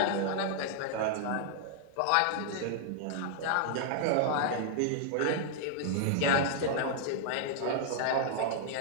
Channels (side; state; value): both; different; correlation -0.01